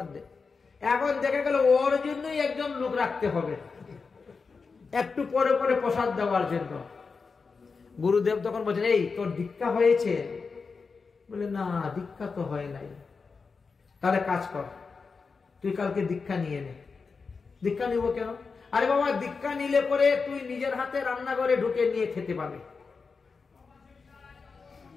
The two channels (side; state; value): right; quieter; 4.8 dB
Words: দে। এখন দেখে গেল ওর জন্যই একজন লোক রাখতে হবে একটু পরে পরে প্রসাদ দেওয়ার জন্য। গুরুদেব তখন বলছেন, এই তোর দীক্ষা হয়েছে? বলে না, দীক্ষা তো হয় নাই। তাহলে কাজ কর, তুই কালকে দীক্ষা নিয়ে নে। দীক্ষা নিব কেন? আরে বাবা, দীক্ষা নিলে পরে তুই নিজের হাতে রান্নাঘরে ঢুকে নিয়ে খেতে পাবে।